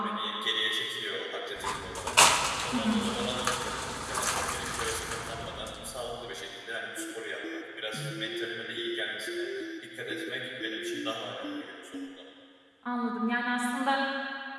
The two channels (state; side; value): identical; both; correlation 1.00